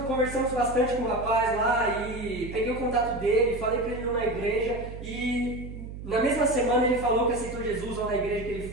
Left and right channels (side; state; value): right; noise; hum, 10 dB below the sound